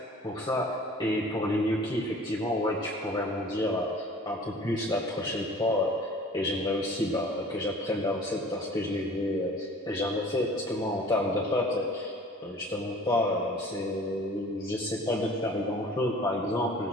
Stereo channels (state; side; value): normal; both; correlation 0.47